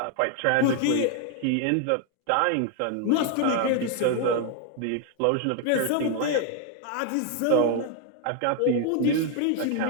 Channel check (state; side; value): different; both; correlation 0.00